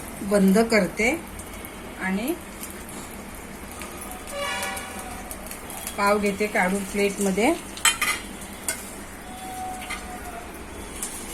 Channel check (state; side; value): identical; both; correlation 1.00